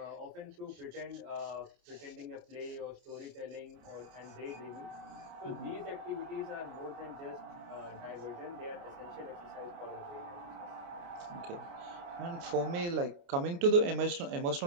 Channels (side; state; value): left; late; 29 ms